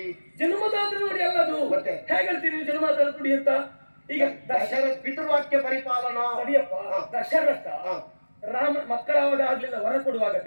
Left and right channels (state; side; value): inverted; both; correlation -1.00